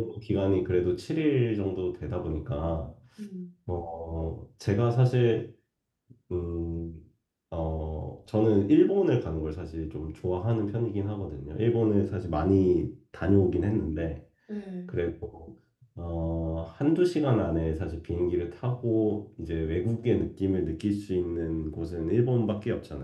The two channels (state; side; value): identical; both; correlation 1.00